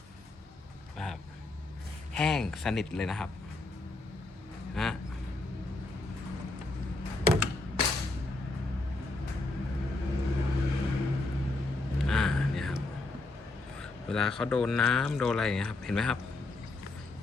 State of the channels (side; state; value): right; quieter; 3.0 dB